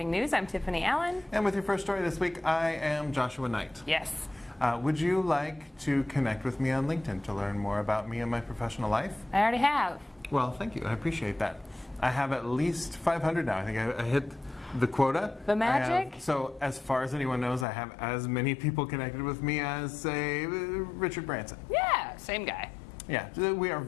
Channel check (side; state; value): right; drops out; at 17.7 s